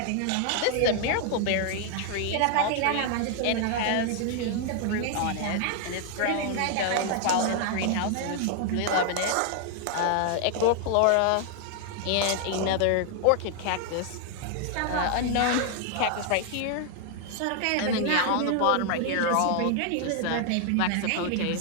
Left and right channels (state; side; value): different; both; correlation 0.00